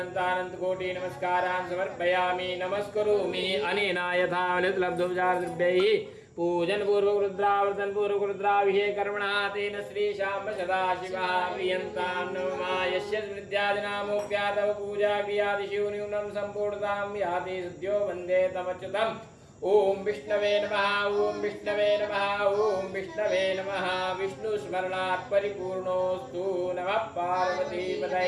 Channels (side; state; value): both; identical; correlation 1.00